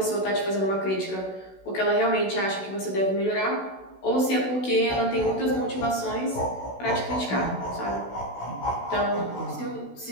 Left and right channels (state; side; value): late; right; 16 ms